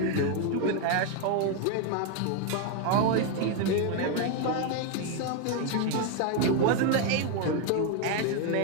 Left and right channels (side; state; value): both; different; correlation 0.01